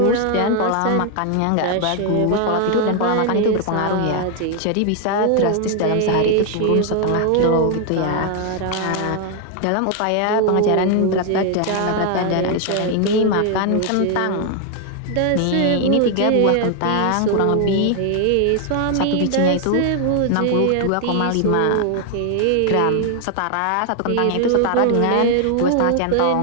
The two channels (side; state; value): both; different; correlation 0.00